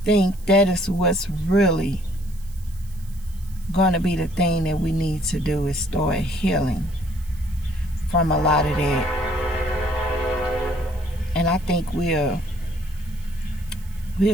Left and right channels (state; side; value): noise; right; hiss, 25 dB below the sound